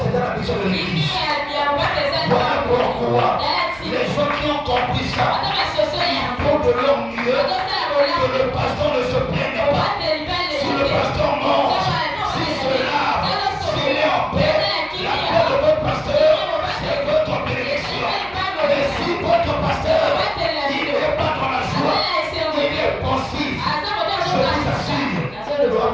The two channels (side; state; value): right; noise; hum, 23 dB below the sound